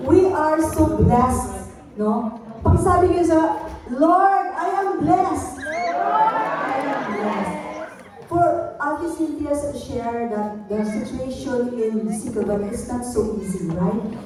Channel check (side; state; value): both; identical; correlation 1.00